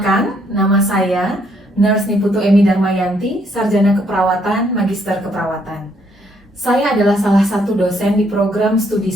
nama saya Nurse Niputu Emi Darmayanti, Sarjana Keperawatan, Magister Keperawatan. Saya adalah salah satu dosen di program studi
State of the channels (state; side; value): normal; both; correlation 0.70